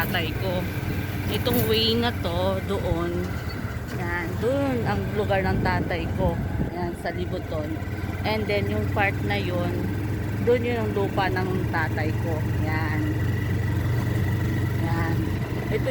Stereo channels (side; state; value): both; identical; correlation 1.00